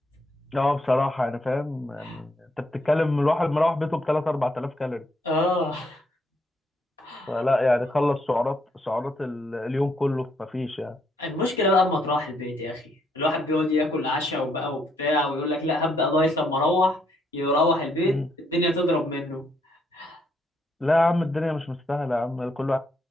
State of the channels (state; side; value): normal; both; correlation 0.73